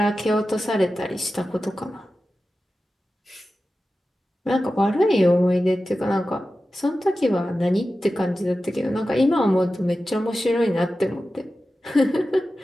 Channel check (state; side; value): normal; both; correlation 0.94